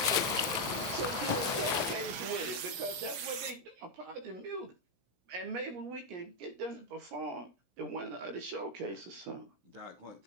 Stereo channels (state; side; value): late; left; 17 ms